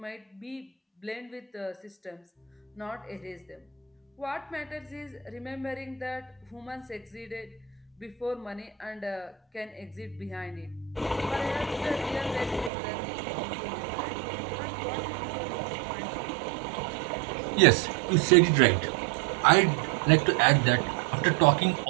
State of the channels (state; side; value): drops out; left; at 12.7 s